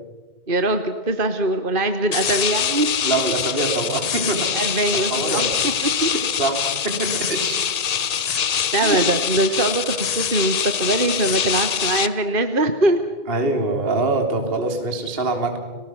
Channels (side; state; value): left; late; 1.8 ms